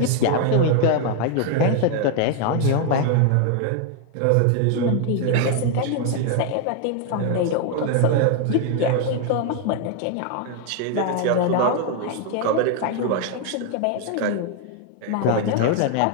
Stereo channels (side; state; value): both; different; correlation 0.01